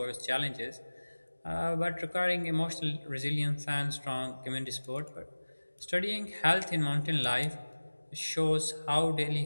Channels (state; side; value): inverted; both; correlation -1.00